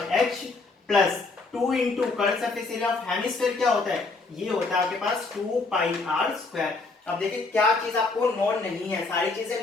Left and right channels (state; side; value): quieter; right; 3.8 dB